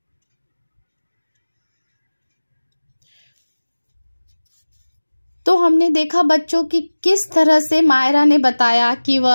तो हमने देखा बच्चों की किस तरह से मायरा ने बताया कि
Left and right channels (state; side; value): inverted; both; correlation -1.00